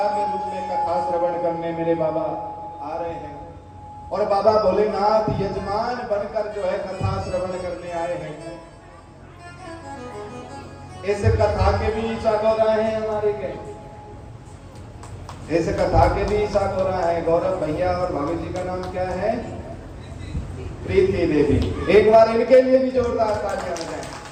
के रूप में कथा श्रवण करने मेरे बाबा आ रहे हैं। और बाबा भोलेनाथ यजमान बनकर जो है कथा श्रवण करने आए हैं। इस कथा के भी ईसा गौरा हैं हमारे के, इस कथा के भी ईसा गौरा है। गौरव भैया और भाभी जी का नाम क्या है? प्रीति देवी। एक बार इनके लिए भी जोरदार तालियां बजाएं,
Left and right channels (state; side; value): identical; both; correlation 1.00